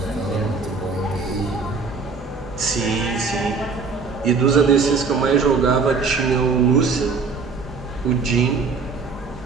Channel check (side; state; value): left; quieter; 4.7 dB